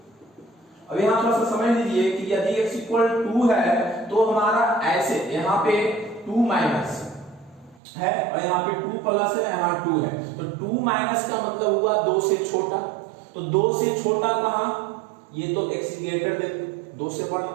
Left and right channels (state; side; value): drops out; left; at 7.8 s